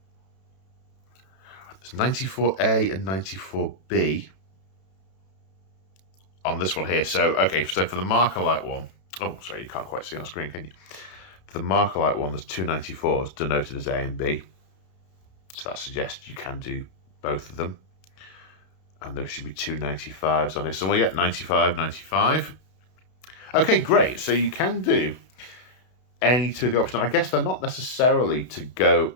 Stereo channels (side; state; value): right; late; 32 ms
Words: There's 94A and 94B on this one here. So, okay, so for the marker light one, oh, sorry, you can't quite see on screen, can you? For the marker light one, there's two 94s denoted as A and B. So that suggests you can do both of them. And there should be two 95s on here. So we get 95, 95. Okay, great. So you can do any two of the options. I guess they're not necessarily to go...